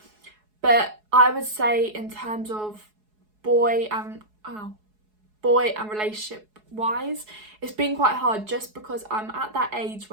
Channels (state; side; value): late; left; 4.7 ms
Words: But I would say in terms of boy and relationship wise, it's been quite hard, just because I'm at that age